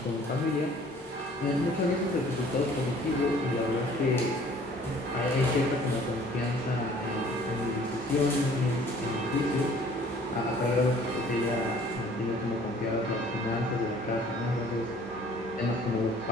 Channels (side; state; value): both; normal; correlation 0.54